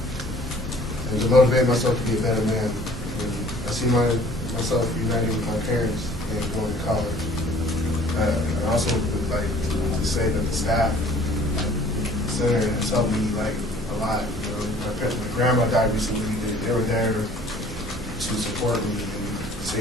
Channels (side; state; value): both; normal; correlation 0.52